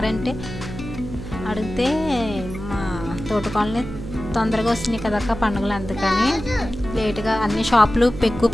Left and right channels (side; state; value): right; noise; hum, 10 dB below the sound